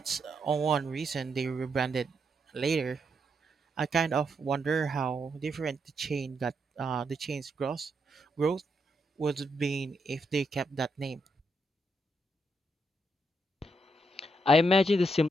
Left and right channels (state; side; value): normal; both; correlation 0.80